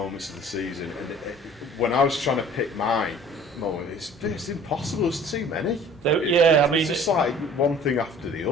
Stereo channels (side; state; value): both; normal; correlation 0.48